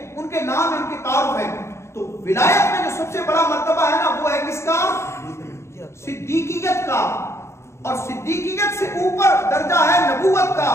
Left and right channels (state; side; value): late; right; 0.13 ms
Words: ان کے نام، ان کے تعارف ہیں۔ تو ولایت میں جو سب سے بڑا مرتبہ ہے نا وہ ہے کس کا؟ صدیقیت کا، اور صدیقیت سے اوپر درجہ ہے نبوت کا،